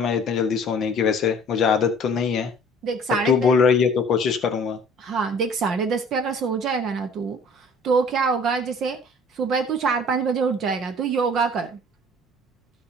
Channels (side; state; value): both; normal; correlation 0.50